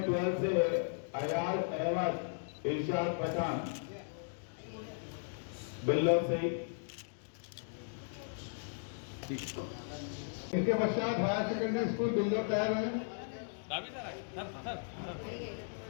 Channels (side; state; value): right; silent; digital silence